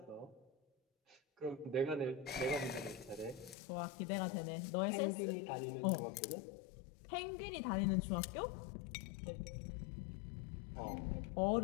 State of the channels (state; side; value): drops out; right; at 3.6 s